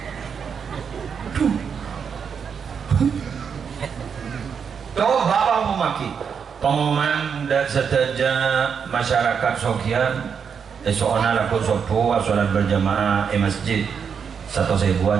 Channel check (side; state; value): left; quieter; 6.7 dB